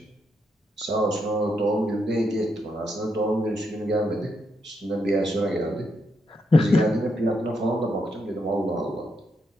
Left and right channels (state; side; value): normal; both; correlation 0.80